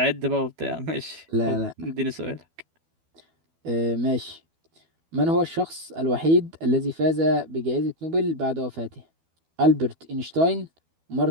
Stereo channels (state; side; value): late; left; 12 ms